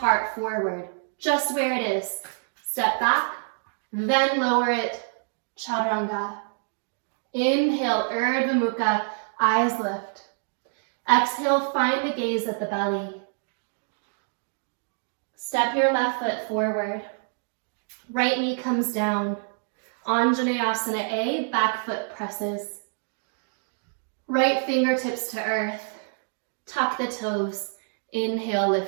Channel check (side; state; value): left; silent; 61 dB below the other